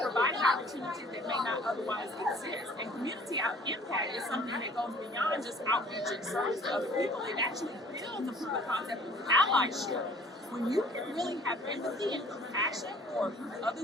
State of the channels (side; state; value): both; normal; correlation 0.52